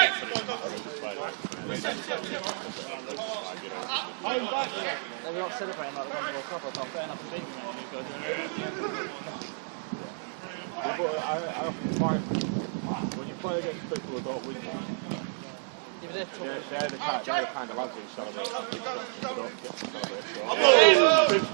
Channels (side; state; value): left; silent; 58 dB below the other